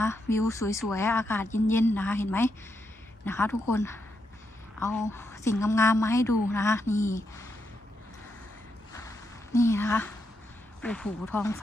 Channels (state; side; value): normal; both; correlation 0.82